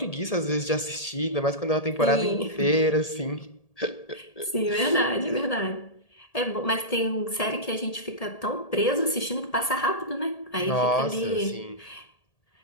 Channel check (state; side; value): late; right; 1.8 ms